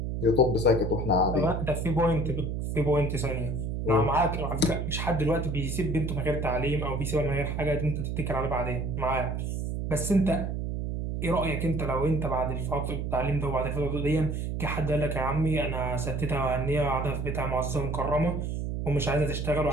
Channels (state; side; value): noise; right; hum, 2 dB below the sound